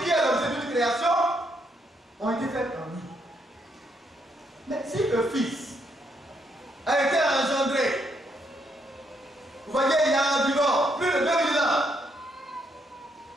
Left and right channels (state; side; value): normal; both; correlation 0.75